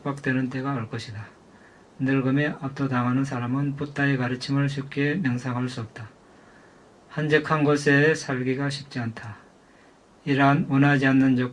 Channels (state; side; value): identical; both; correlation 1.00